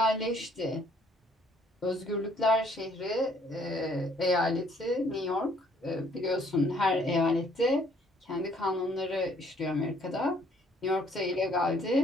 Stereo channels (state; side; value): normal; both; correlation 0.63